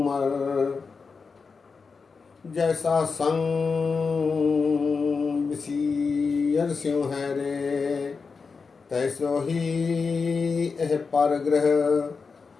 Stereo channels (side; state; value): right; quieter; 4.9 dB